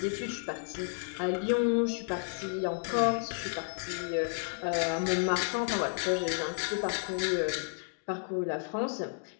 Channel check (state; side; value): silent; right; 56 dB below the other